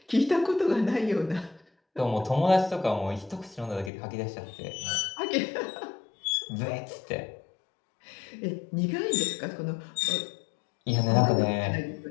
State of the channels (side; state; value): right; drops out; at 3.9 s